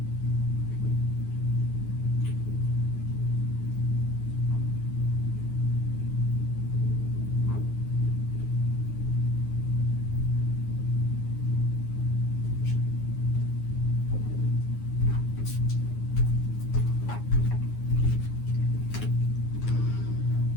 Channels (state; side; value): late; right; 9.5 ms